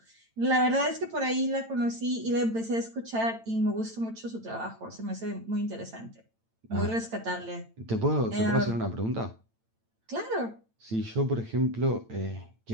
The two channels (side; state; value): left; late; 8.9 ms